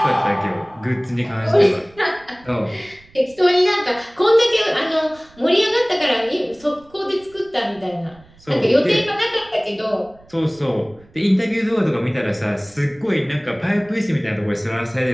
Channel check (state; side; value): noise; right; rumble, 27 dB below the sound